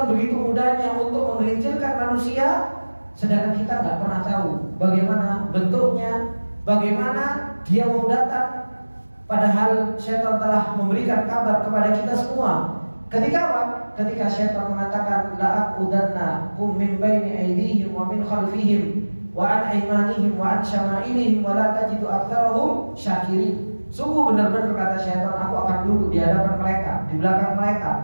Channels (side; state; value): both; inverted; correlation -1.00